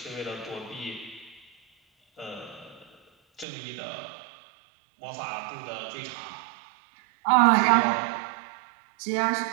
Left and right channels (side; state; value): left; drops out; at 3.5 s